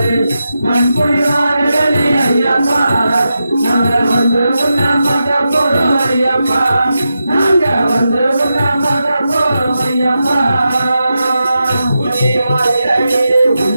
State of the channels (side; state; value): both; inverted; correlation -0.89